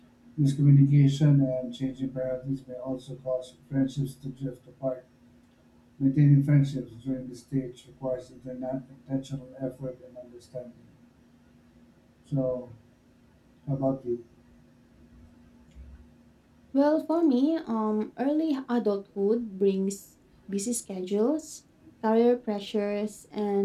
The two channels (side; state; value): both; identical; correlation 1.00